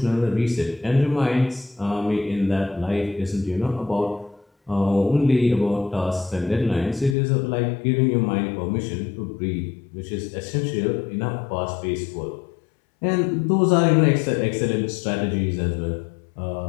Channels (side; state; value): right; drops out; at 7.2 s